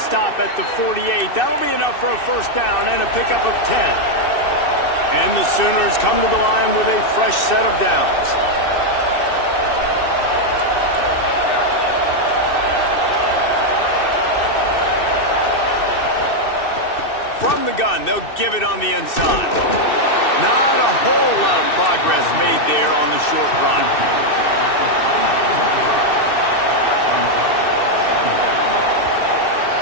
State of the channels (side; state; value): right; late; 2.6 ms